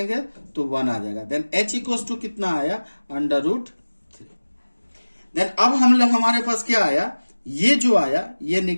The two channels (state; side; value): inverted; both; correlation -1.00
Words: तो 1 आ जाएगा। देन h इक्वल टू कितना आया, √3। देन अब हमारे पास क्या आया, ये जो आया ये